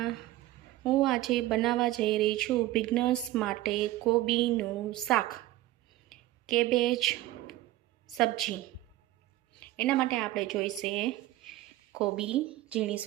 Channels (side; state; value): left; quieter; 16.4 dB